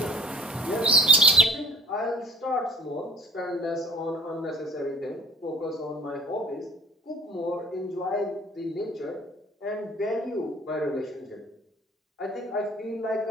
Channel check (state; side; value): normal; both; correlation 0.46